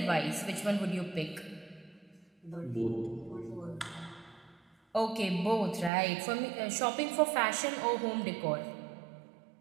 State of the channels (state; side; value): drops out; left; at 5.9 s